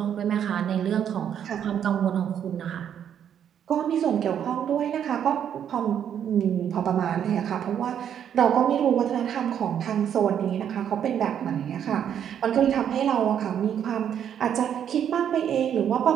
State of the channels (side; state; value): left; quieter; 9.1 dB